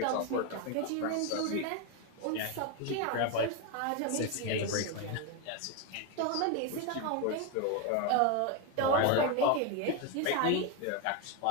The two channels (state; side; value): different; both; correlation 0.02